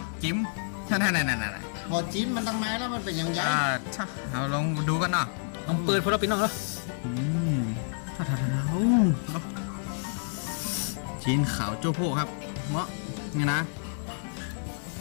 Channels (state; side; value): silent; right; digital silence